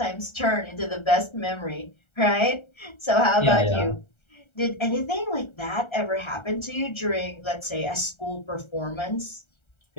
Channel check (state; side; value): late; right; 1.3 ms